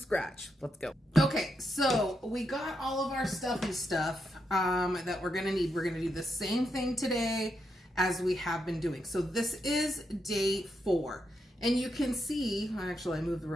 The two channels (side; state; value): both; normal; correlation 0.83